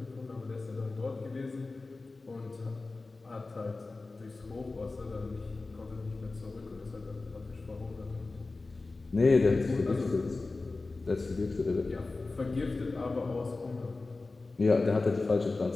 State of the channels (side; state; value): right; quieter; 3.5 dB